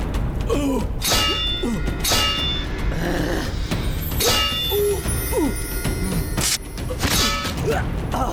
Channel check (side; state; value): both; identical; correlation 1.00